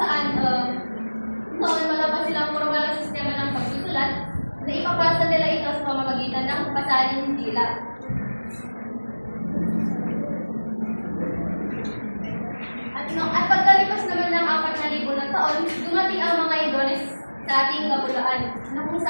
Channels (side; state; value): both; inverted; correlation -1.00